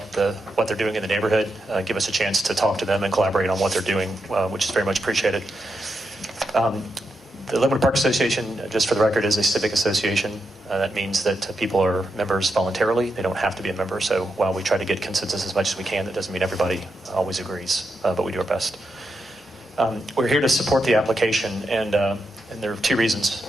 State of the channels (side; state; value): both; normal; correlation 0.85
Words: what they're doing in the neighborhood, give us a chance to talk to them and collaborate on what they're doing, which is very much appreciated. The Linwood Park Association, just for the record, is a civic association. That means that people are members voluntarily. They don't have to be a member. So while we try to get consensus as much as we can, that doesn't mean everybody always agrees, but we do our best. We're here to support the application, and there are two reasons